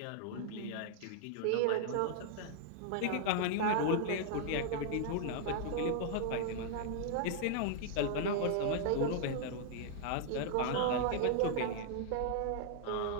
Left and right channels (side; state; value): both; different; correlation -0.01